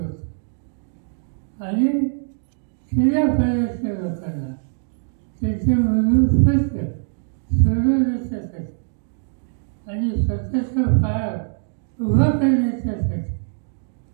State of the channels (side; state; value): left; silent; 59 dB below the other